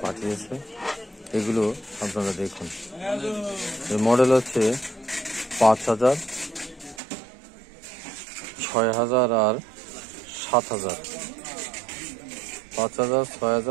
পাঠিয়েছে। এগুলো আপনারা দেখুন। এর মডেল হচ্ছে 5000, 6000 আর 7000। 5000,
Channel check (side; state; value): left; drops out; at 7.0 s